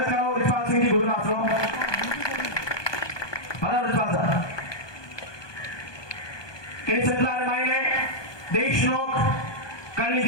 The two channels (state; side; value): late; right; 1.2 ms